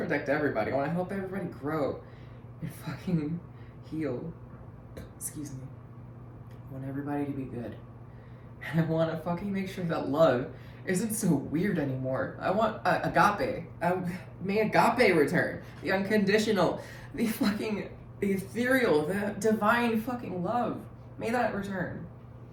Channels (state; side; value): identical; both; correlation 1.00